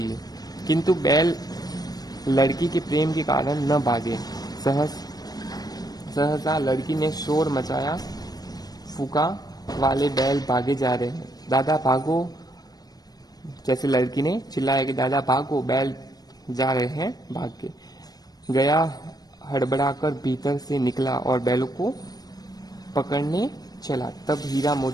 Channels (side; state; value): right; late; 0.19 ms